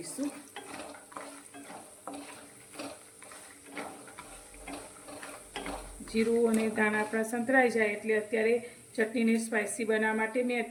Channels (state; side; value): identical; both; correlation 1.00